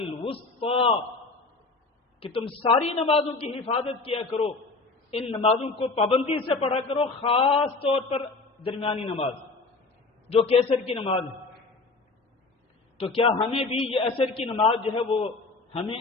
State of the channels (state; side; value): quieter; right; 3.7 dB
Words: کہ تم ساری نمازوں کی حفاظت کیا کرو، ان نمازوں کو پابندی سے پڑھا کرو، خاص طور پر درمیانی نماز جو کہ عصر کی نماز ہے۔ تو کیا ہمیں بھی یہ عصر کی نماز جو ہے وہ ہمیں